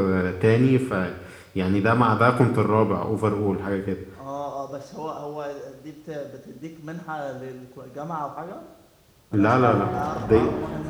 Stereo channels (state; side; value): identical; both; correlation 1.00